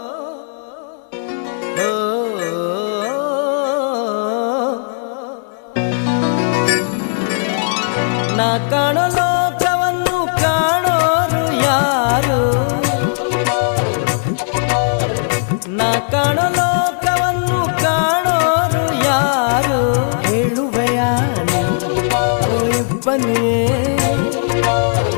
ಕಾಣೋ ಲೋಕವನ್ನು ಕಾಣೋರು ಯಾರು? ನಾ ಕಾಣೋ ಲೋಕವನ್ನು ಕಾಣೋರು ಯಾರು? ಹೇಳುವೆಯ ಇಬ್ಬನಿಯೇ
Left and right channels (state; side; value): silent; right; digital silence